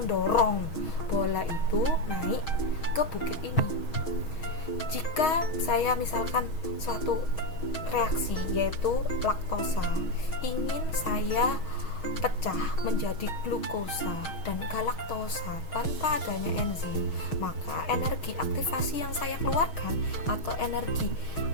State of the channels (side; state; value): right; late; 6.3 ms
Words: bola itu naik ke bukit ini. Jika saya misalkan suatu reaksi yaitu laktosa ingin saya pecah menjadi glukosa dan galaktosa tanpa adanya enzim, maka energi aktivasi yang saya keluarkan atau energi